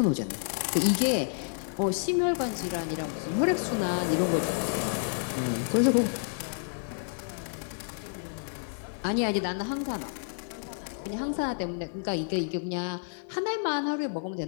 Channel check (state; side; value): silent; right; 58 dB below the other